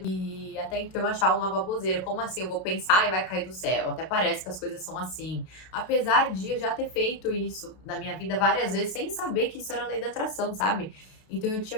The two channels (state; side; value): late; right; 32 ms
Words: e até então eu achava uma baboseira. Como assim? Eu vou pensar e vai cair do céu. Até parece que as coisas são assim. Apesar de eu já ter feito isso na minha vida várias vezes, sem saber que isso era lei da atração, sabe? Então eu tinha